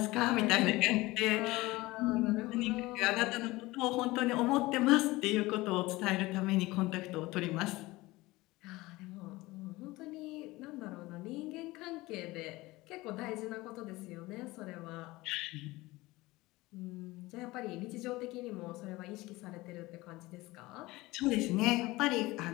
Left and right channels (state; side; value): quieter; right; 20.2 dB